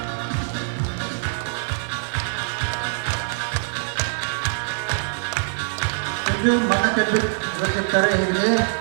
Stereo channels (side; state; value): left; silent; 63 dB below the other